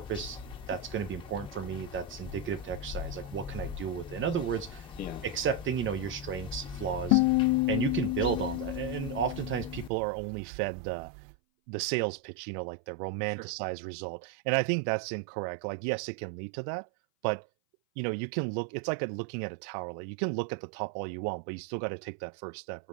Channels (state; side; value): drops out; left; at 9.9 s